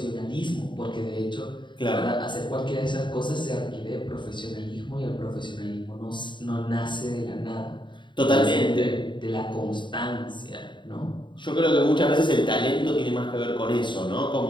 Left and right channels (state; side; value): late; right; 0.23 ms